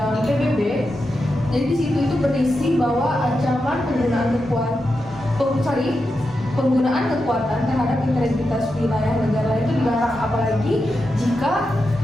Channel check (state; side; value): normal; both; correlation 0.88